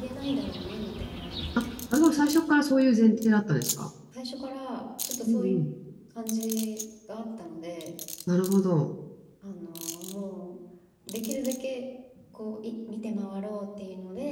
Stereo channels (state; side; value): identical; both; correlation 1.00